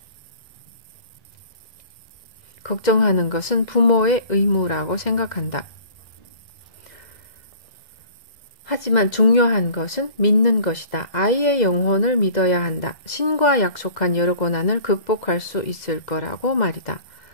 걱정하는 것은 부모의 의무라고 생각한다. 하지만 중요한 것은 믿는 것이다. 아이의 영혼을 믿어야 한다. 신과 약속한 여러 고난을 극복할 수 있을 거라고 말이다.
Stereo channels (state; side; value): late; right; 2.0 ms